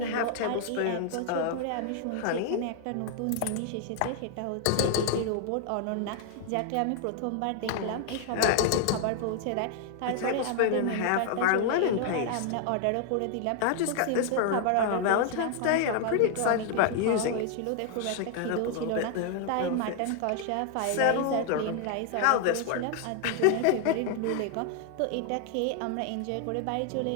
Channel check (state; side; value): different; both; correlation 0.00